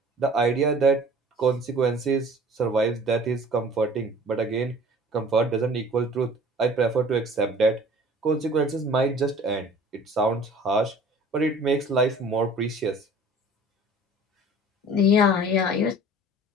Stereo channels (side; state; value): both; normal; correlation 0.48